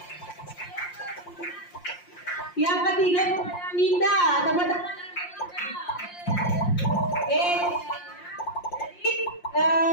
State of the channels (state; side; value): late; right; 5.7 ms